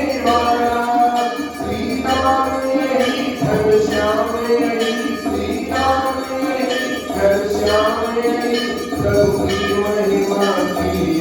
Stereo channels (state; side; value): identical; both; correlation 1.00